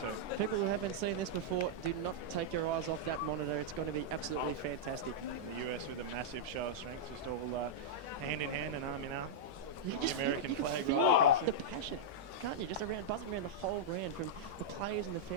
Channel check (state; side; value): normal; both; correlation -0.06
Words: People who haven't seen this before, do not take your eyes off that monitor. It's going to be absolutely fantastic. The US with a massive show of strength, just all hand in hand and arm in arm. You The American flag right feel across the it. passion, can't you? Just around, buzzing around the whole ground from the players and the